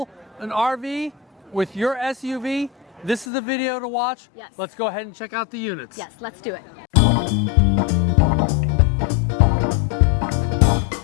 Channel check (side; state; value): right; drops out; at 3.2 s